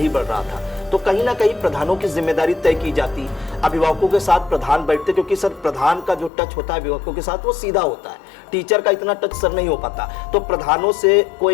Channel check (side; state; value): right; drops out; at 6.3 s